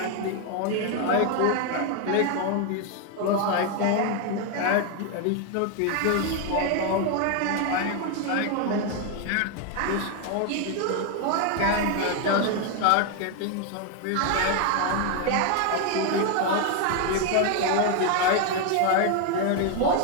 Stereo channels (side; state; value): both; different; correlation 0.01